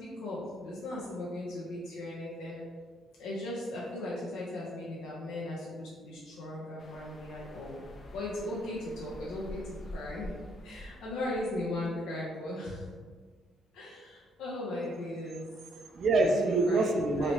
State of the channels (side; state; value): both; normal; correlation 0.69